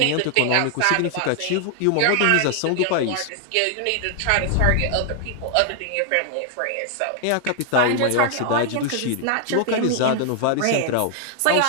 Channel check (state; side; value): different; both; correlation 0.00